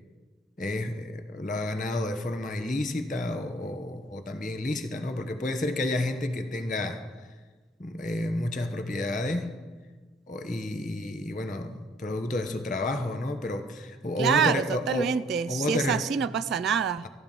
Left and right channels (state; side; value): normal; both; correlation 0.60